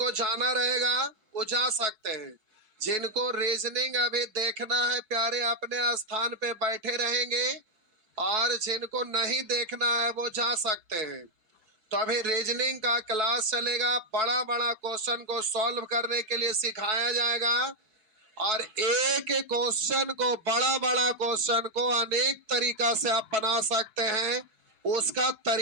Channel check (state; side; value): late; left; 4.6 ms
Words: जाना रहेगा वो जा सकते हैं। जिनको रीजनिंग अभी देखना है प्यारे, अपने स्थान पे बैठे रहेंगे और जिनको नहीं देखना है वो जा सकते हैं। तो अभी रीजनिंग का क्लास चलेगा, बड़ा बड़ा क्वेश्चन को सॉल्व करने के लिए सिखाया जाएगा और एक एक क्वेश्चन को, बड़ा बड़ा क्वेश्चन को अनेक तरीका से आप बना सकते हैं, उसका